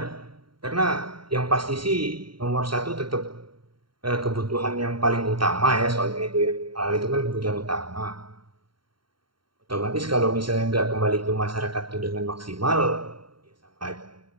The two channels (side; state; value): left; late; 0.73 ms